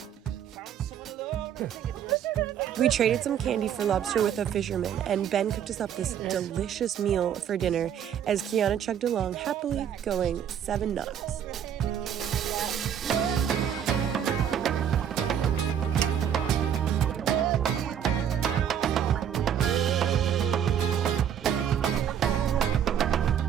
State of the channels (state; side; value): quieter; left; 9.1 dB